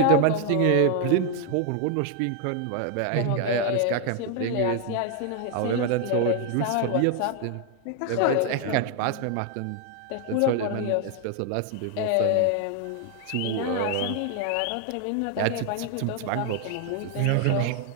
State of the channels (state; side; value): different; both; correlation 0.00